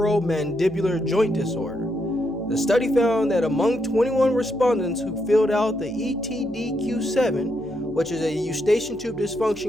joint disorder. The study found that among 21 respondents who filled out the ETDQ7, which is a Eustachian Tube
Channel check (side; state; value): left; noise; hum, 22 dB below the sound